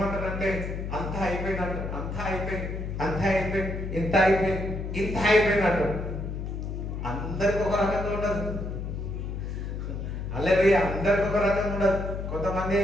అంతా అయిపోయినట్టు, అంతా అయిపోయింది, అంతా అయిపోయింది, ఇంత అయిపోయింది, ఇంత అయిపోయినట్టు. అందరికి ఒక రకంగా ఉండదు. అలాగే అందరికి ఒక రకంగా ఉండదు. కొంతమంది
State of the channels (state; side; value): noise; left; hum, 5 dB below the sound